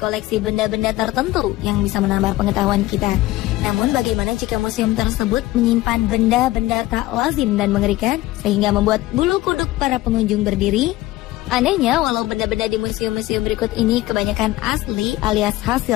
koleksi benda-benda tertentu yang bisa menambah pengetahuan kita. Namun bagaimana jika museum tersebut menyimpan benda-benda tak lazim dan mengerikan sehingga membuat bulu kuduk para pengunjung berdiri? Anehnya, walau benda-benda di museum-museum berikut ini kebanyakan asli alias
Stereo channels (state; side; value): quieter; right; 17.4 dB